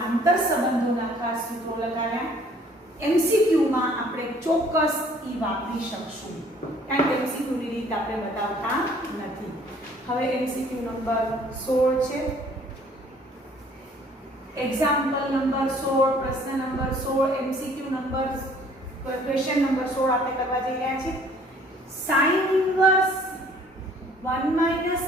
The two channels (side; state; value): both; normal; correlation 0.57